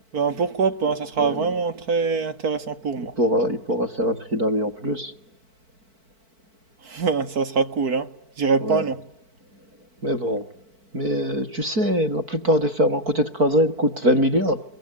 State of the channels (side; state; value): left; late; 4.5 ms